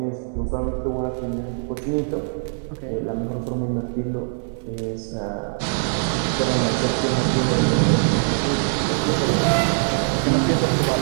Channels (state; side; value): silent; left; digital silence